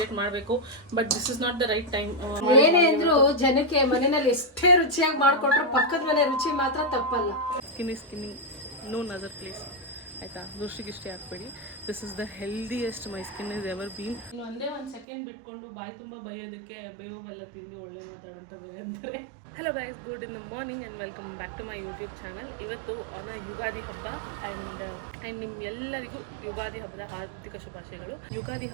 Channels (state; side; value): drops out; left; at 15.1 s